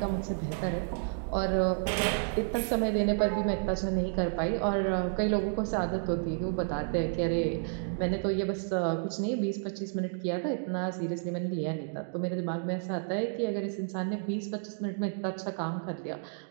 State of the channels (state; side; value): silent; left; digital silence